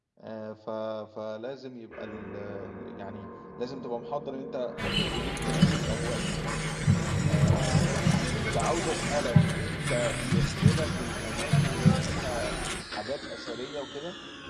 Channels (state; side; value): identical; both; correlation 1.00